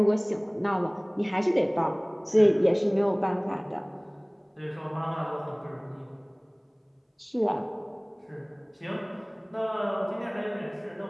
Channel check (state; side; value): identical; both; correlation 1.00